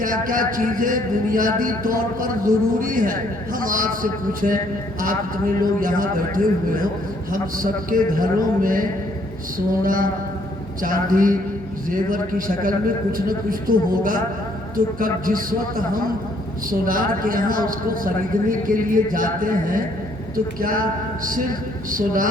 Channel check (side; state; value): both; normal; correlation 0.66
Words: کیا چیزیں بنیادی طور پر ضروری ہیں۔ ہم آپ سے پوچھیں، آپ اتنے لوگ یہاں بیٹھے ہوئے ہو، ہم سب کے گھروں میں سونا چاندی زیور کی شکل میں کچھ نہ کچھ تو ہوگا، تو کب جس وقت ہم سونار کے یہاں اس کو خریدنے کے لیے جاتے ہیں تو کیا صرف